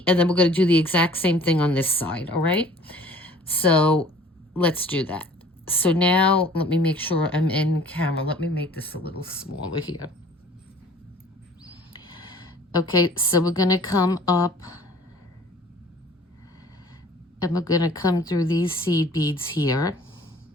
and then we're going to do the exact same thing on this side. All right, so let's do that. So now let me make sure I'm in camera. Let me make this a little smaller here. Okay, so we're going to come up and we're going to come through these seed beads here,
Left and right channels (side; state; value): both; normal; correlation 0.51